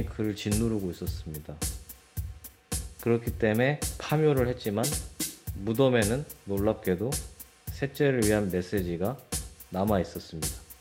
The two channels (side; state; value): both; identical; correlation 1.00